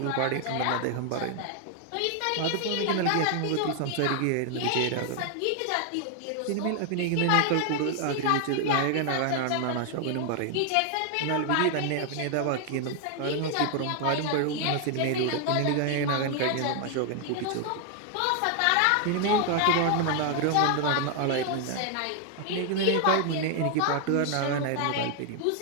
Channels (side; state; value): both; different; correlation 0.00